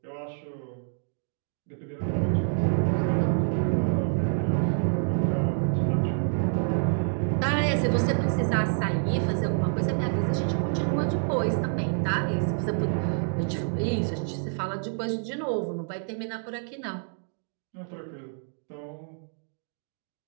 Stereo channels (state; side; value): silent; left; 60 dB below the other